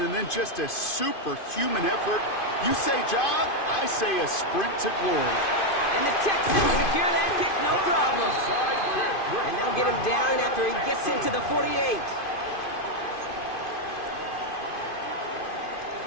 then just a superhuman effort. You say jog, I say a sprint to glory. And the Texans secure that kick, no problem. And they'll get him down after he gets into the 48.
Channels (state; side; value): late; right; 2.5 ms